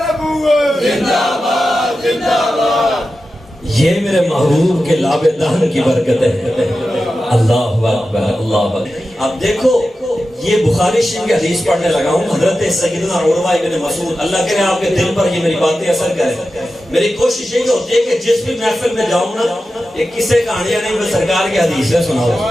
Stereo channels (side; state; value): both; normal; correlation 0.92